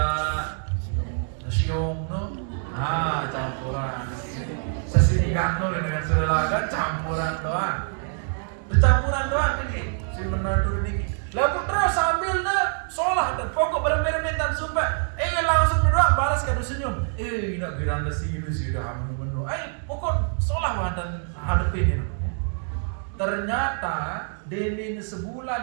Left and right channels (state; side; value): silent; left; 62 dB below the other